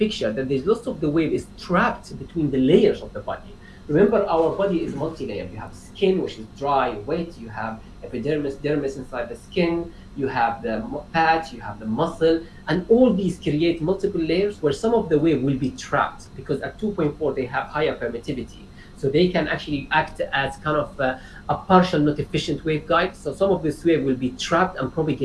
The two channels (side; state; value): both; identical; correlation 1.00